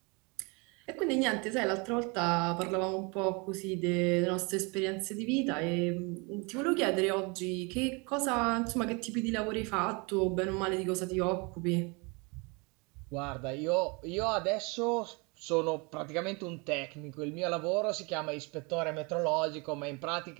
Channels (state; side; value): quieter; left; 29.7 dB